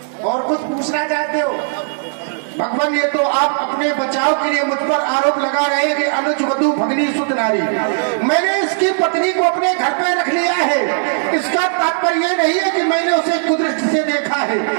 और कुछ पूछना चाहते हो? भगवान, ये तो आप अपने बचाव के लिए मुझ पर आरोप लगा रहे हैं कि अनुज वधु भगनी सुत नारी। मैंने इसकी पत्नी को अपने घर पे रख लिया है, इसका तात्पर्य ये नहीं है कि मैंने उसे कुदृष्टि से देखा है।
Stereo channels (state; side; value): silent; left; digital silence